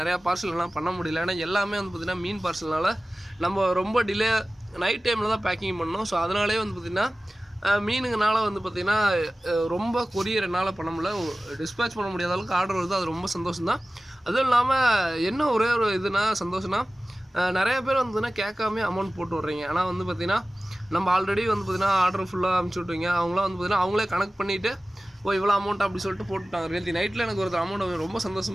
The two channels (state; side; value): normal; both; correlation 0.97